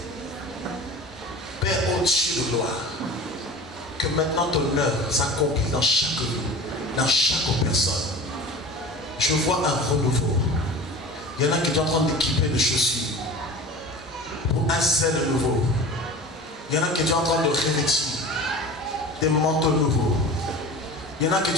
Père au-dessus de gloire, que maintenant ton œuvre s'accomplisse dans chaque vie, dans chaque personne. Je vois un renouveau. Il y en a qui sont en train d'équiper de chaussures pour un zèle nouveau. Il y en a qui sont en train de revêtir des manteaux nouveaux. Il y en a qui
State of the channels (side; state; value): both; normal; correlation 0.37